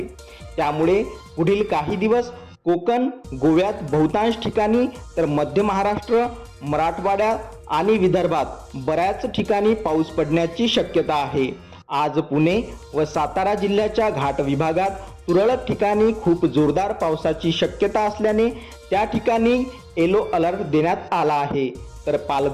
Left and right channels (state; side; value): identical; both; correlation 1.00